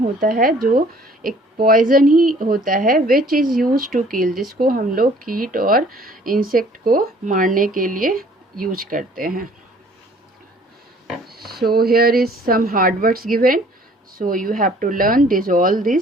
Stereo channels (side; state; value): both; normal; correlation 0.55